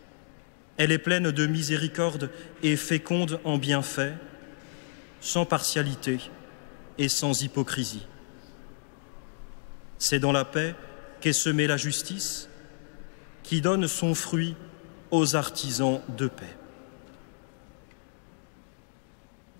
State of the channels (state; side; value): silent; right; digital silence